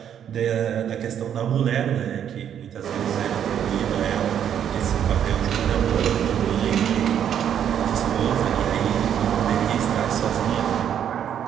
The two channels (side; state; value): left; quieter; 9.3 dB